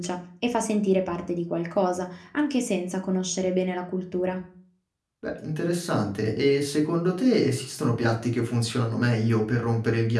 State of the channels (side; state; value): both; identical; correlation 1.00